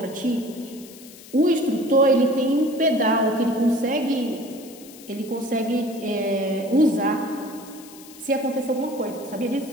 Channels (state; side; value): noise; left; hiss, 19 dB below the sound